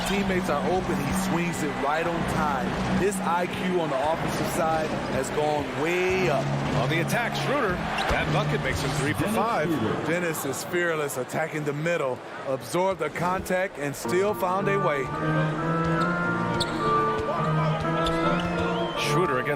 teammates are open, he swings it right on time. His IQ on the offensive side has gone way up. On the attack, Schroeder. That bucket makes him 3 for 5. Dennis is fearless, attacking the middle, absorbed the contact, and still found a way. Schroeder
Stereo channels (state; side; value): identical; both; correlation 1.00